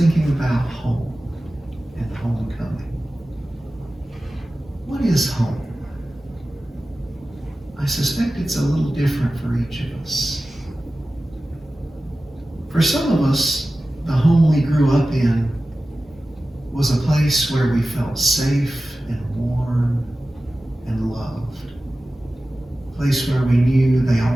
about home and homecoming. What is home? I suspect it's a little different for each of us. For some of us, the home we grew up in was a place where we felt safe and warm and loved. A place where we knew they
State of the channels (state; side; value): normal; both; correlation 0.95